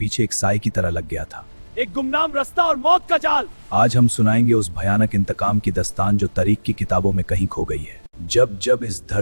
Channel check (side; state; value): both; inverted; correlation -1.00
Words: एक साए की तरह लग गया था, एक गुमनाम रास्ता और मौत का जाल। आज हम सुनाएंगे उस भयानक इंतकाम की दास्तान जो तारीख की किताबों में कहीं खो गई है। जब जब इस